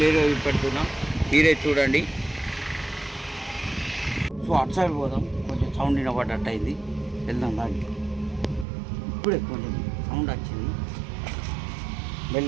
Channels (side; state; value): left; drops out; at 8.7 s